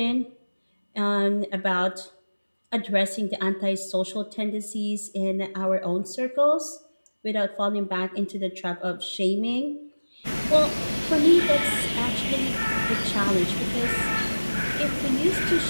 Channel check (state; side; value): inverted; both; correlation -1.00